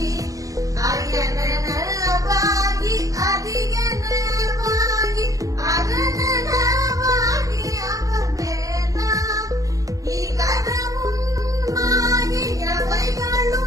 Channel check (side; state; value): left; late; 0.17 ms